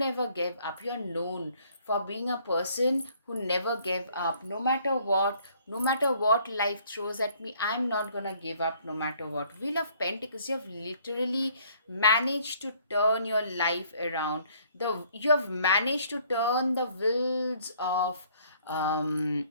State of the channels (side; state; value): both; inverted; correlation -0.61